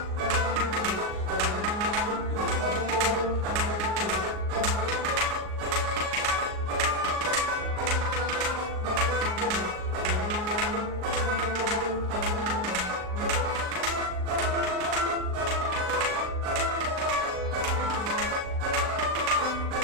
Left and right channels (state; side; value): late; left; 38 ms